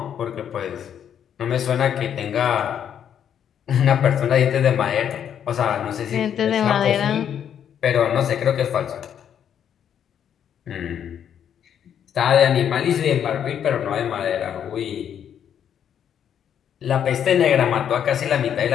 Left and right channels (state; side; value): quieter; right; 9.0 dB